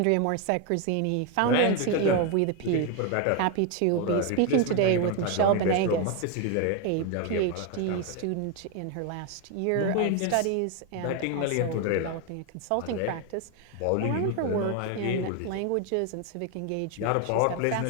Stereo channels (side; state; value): both; different; correlation 0.01